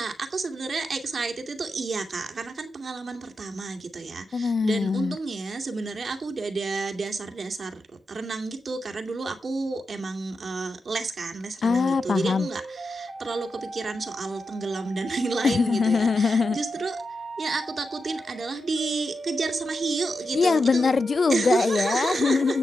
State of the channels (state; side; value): normal; both; correlation 0.88